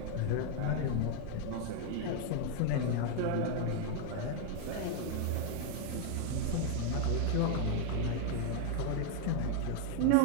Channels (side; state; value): both; different; correlation 0.00